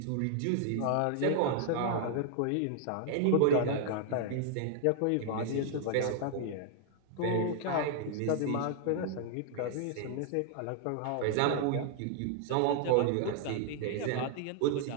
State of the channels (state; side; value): different; both; correlation -0.01